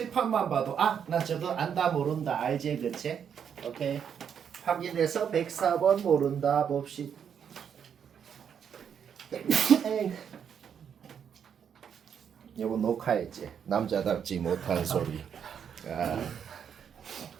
봐도 나 저거 안다 모른다 알지 그치? 오케이 확인해서 104번 모른다 봅시다. 요거 녹화했지? 남자답지 못한 소리.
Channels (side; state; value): left; quieter; 7.9 dB